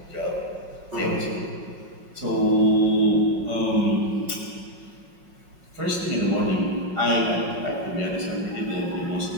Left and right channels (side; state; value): left; late; 5.4 ms